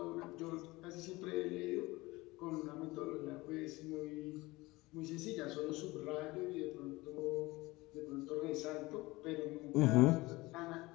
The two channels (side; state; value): right; quieter; 21.2 dB